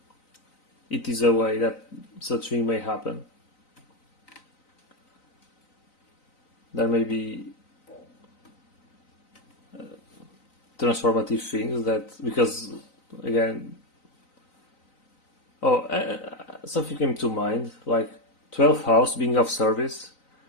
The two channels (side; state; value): right; late; 3.9 ms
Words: it is a way that such thing may happen. There may be transformative things that, because again, something came to mind, like 12th house being of service